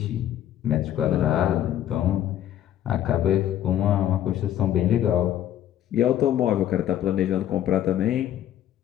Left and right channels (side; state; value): right; quieter; 11.5 dB